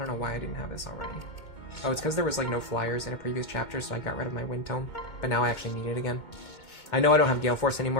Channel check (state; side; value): late; right; 2.2 ms